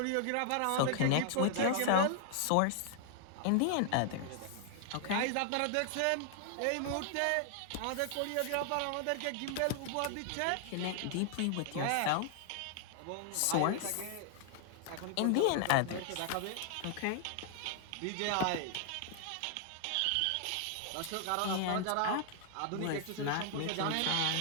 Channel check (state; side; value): different; both; correlation 0.00